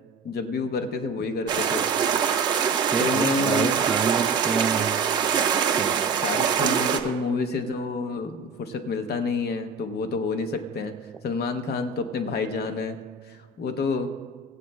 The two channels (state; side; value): quieter; left; 3.0 dB